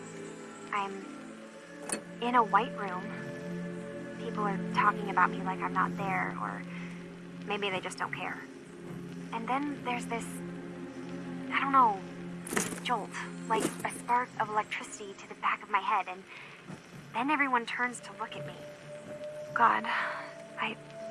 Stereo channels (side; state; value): both; identical; correlation 1.00